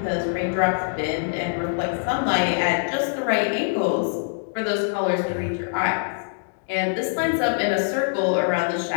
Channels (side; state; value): right; silent; digital silence